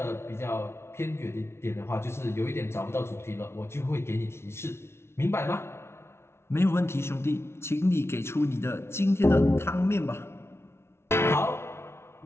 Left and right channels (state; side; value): late; right; 0.12 ms